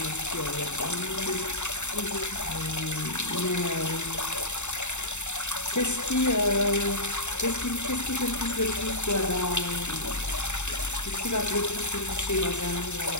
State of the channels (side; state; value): right; late; 0.83 ms